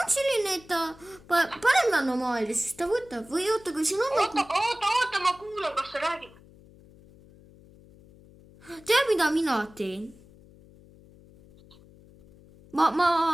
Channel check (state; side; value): noise; left; hum, 24 dB below the sound